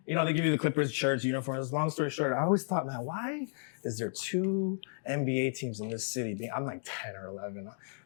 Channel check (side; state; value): right; silent; digital silence